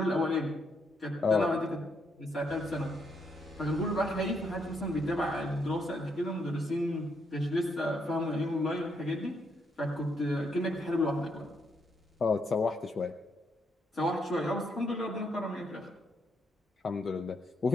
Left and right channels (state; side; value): normal; both; correlation 0.76